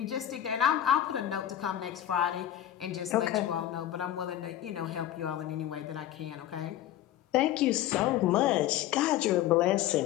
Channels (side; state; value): right; quieter; 12.2 dB